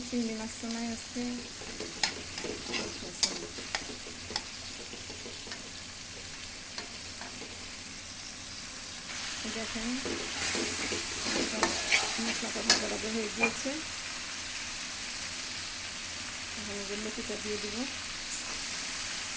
চিংড়ি মাছ তো নাই আজকে। দেখেন মশলাটা ভাজা হয়ে গিয়েছে। এখন যে লতিটা দিয়ে দিব।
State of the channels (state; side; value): identical; both; correlation 1.00